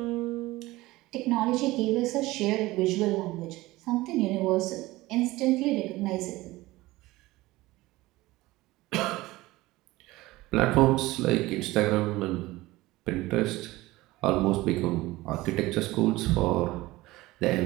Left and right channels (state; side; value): quieter; left; 19.1 dB